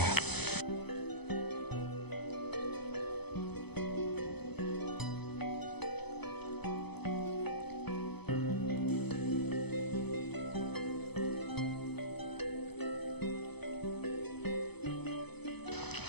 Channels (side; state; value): right; late; 0.98 ms